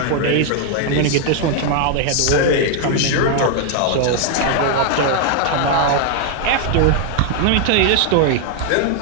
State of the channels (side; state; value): both; different; correlation 0.00